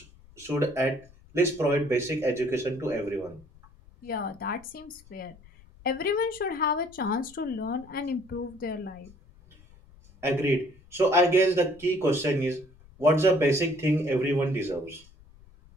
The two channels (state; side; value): noise; left; rumble, 25 dB below the sound